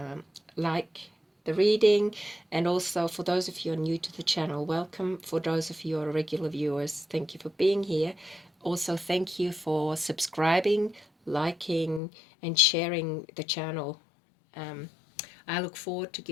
like the reading, and also for those of you who are new to the channel, welcome. For those of you who are regular viewers, thank you for being here. Also, thank you for subscribing, liking, and sharing the channel. I look forward to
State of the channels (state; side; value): drops out; right; at 12.0 s